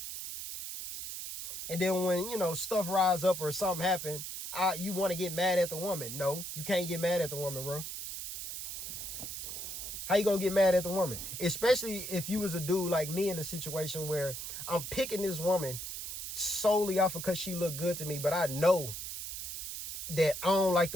And then when, you know, stuff rise up or something happen, you want to get mad at the woman. No, you can't get mad at the woman, bro. How you gonna get mad at the woman? Especially if you was a dude like me in a situation where I'm picking this woman solely off of because she looked good to me, but I know that I don't like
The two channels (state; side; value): noise; right; hiss, 7 dB below the sound